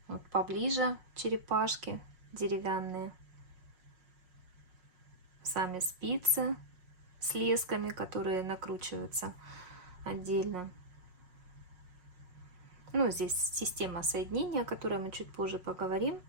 Вот поближе черепашки деревянные. Сами спицы с лесками, которые накручиваются отдельно. Ну, здесь система соединения, о которой мы чуть позже поговорим.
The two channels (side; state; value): left; late; 5.5 ms